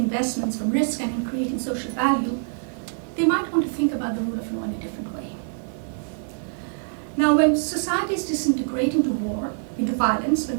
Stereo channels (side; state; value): left; silent; 55 dB below the other